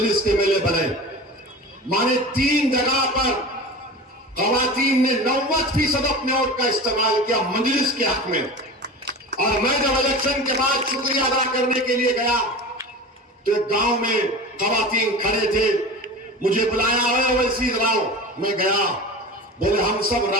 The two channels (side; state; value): both; normal; correlation 0.33